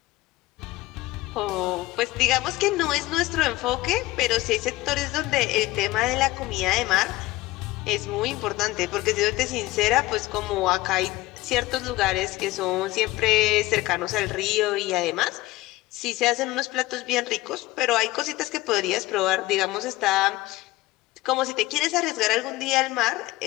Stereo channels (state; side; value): quieter; right; 18.6 dB